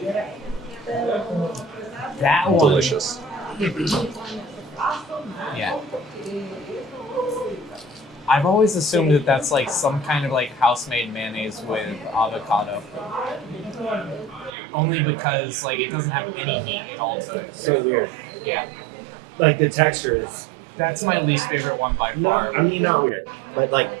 That one, Delicious. yeah. I've always assumed that that's like some kind of like house-made mayonnaise with avocado. Only because like it doesn't have any heat at all to it. So weird. Yeah. Like the texture is. That's my least favorite one by far. I mean, not weird, but like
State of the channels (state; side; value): drops out; left; at 14.5 s